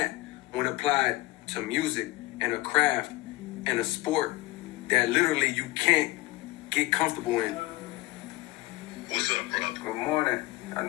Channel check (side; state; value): right; quieter; 20.1 dB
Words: when applied to music and a craft and a sport that literally you can't get comfortable in. What's up, bro? Good morning. I